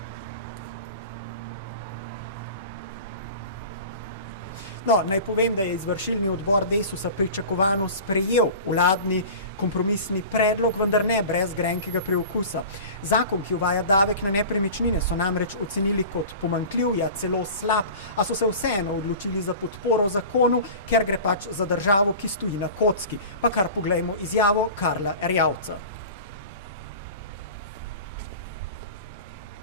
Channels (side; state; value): both; inverted; correlation -0.37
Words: No, naj povem, da je izvršilni odbor Desusa pričakovano sprejel vladni kompromisni predlog, vendar ne brez grenkega preokusa. Zakon, ki uvaja davek na nepremičnine, so namreč ocenili kot pomanjkljiv, ja celo slab, a so se vseeno odločili za podporo zakonu, ker gre pač za državo, ki stoji na kocki. Pa kar poglejmo izjavo Karla Erjavca.